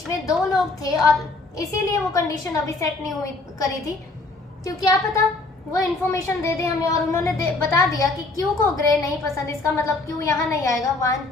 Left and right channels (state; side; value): quieter; right; 3.2 dB